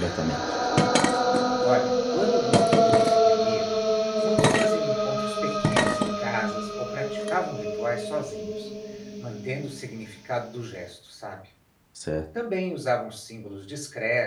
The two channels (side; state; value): both; identical; correlation 1.00